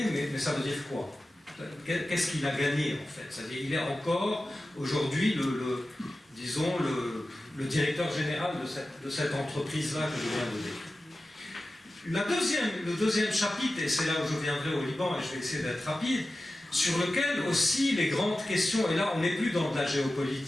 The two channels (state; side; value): normal; both; correlation 0.94